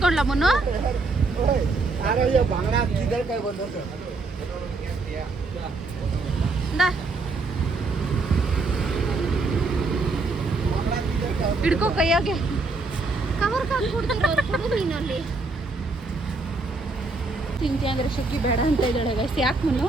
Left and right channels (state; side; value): quieter; left; 3.6 dB